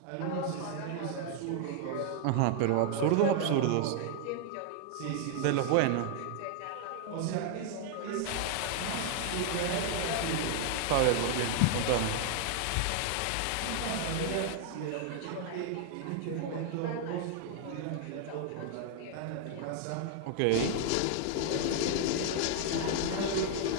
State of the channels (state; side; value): different; both; correlation 0.00